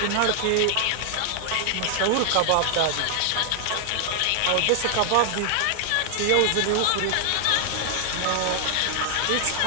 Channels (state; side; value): different; both; correlation 0.00